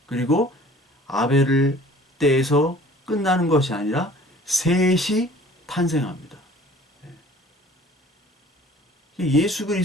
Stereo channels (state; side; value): normal; both; correlation 0.50